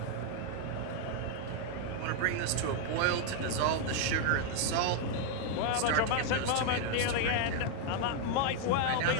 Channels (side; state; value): both; different; correlation 0.00